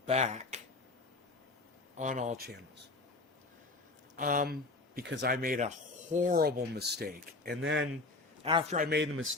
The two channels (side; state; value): right; quieter; 3.3 dB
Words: back on all channels. Because I made a horrible mistake. And then after I made the